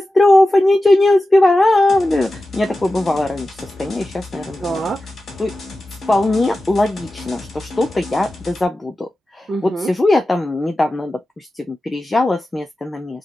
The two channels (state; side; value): normal; both; correlation 0.94